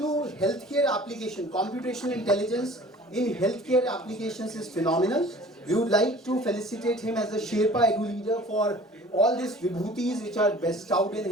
healthcare application, computational intelligence in healthcare applications is phenomenal. We would like to felicitate him as a Sherpa Edu leader for all these vibhutis which are bestowed in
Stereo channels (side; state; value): both; normal; correlation 0.47